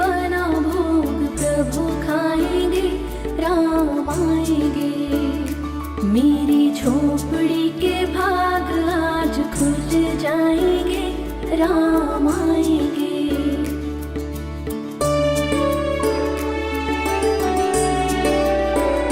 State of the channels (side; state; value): both; identical; correlation 1.00